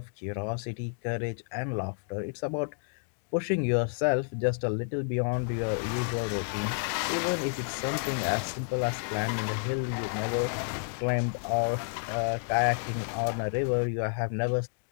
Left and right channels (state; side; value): silent; right; digital silence